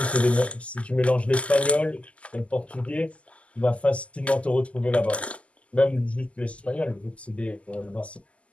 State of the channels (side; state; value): right; late; 0.061 ms